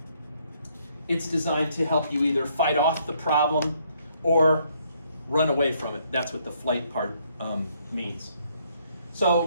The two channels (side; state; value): both; inverted; correlation -0.69